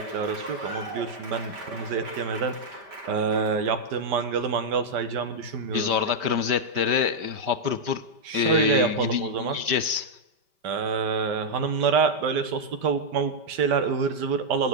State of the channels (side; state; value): left; late; 5.1 ms